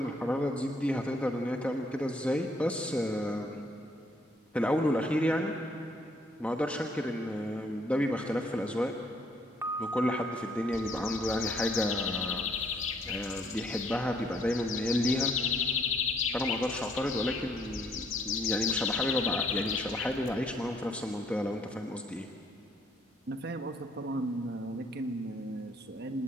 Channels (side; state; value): both; normal; correlation 0.66